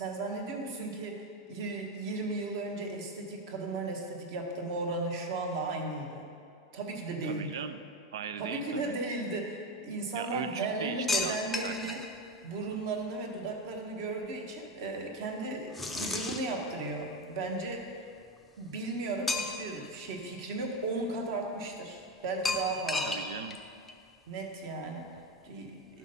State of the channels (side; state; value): both; normal; correlation 0.15